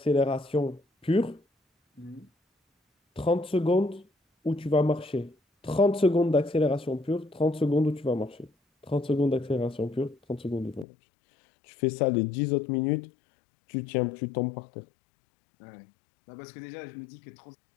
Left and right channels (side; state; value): right; drops out; at 10.9 s